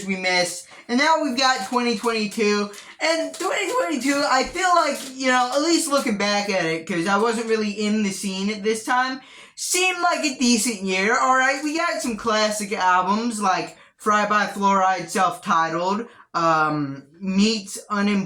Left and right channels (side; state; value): both; identical; correlation 1.00